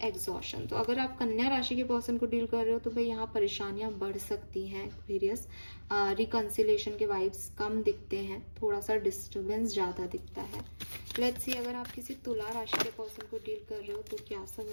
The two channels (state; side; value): inverted; both; correlation -1.00